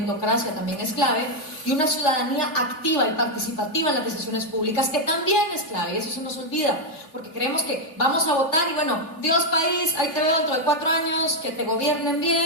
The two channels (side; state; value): right; late; 3.1 ms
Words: también es clave, y una ciudadanía activa y participativa en las decisiones públicas, que también es clave, y eso se nos olvida, porque creemos que vamos a votar y bueno, Dios país, ahí te veo dentro de 4 años, que te gobiernen